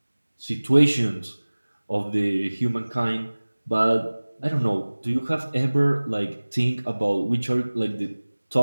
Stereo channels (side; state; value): both; inverted; correlation -1.00